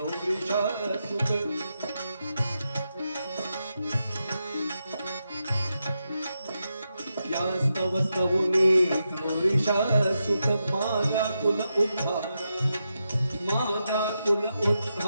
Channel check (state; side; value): inverted; both; correlation -0.86